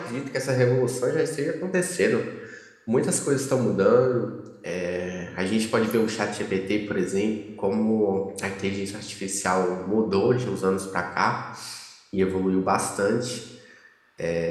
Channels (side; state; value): both; identical; correlation 1.00